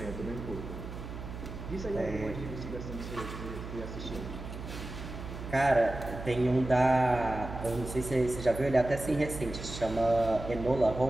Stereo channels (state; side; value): noise; right; hum, 10 dB below the sound